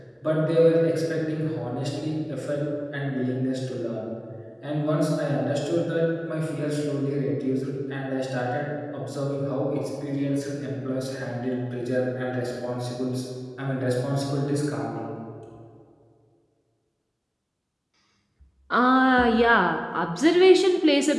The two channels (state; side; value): identical; both; correlation 1.00